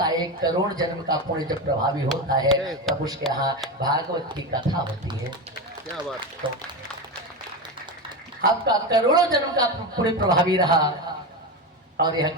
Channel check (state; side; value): normal; both; correlation 0.18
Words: 1 करोड़ जन्म का पुण्य जब प्रभावी होता है तब उसके यहाँ भागवत की कथा होती है। क्या बात। तो आपका करोड़ों जन्म का पुण्य प्रभावी रहा और यह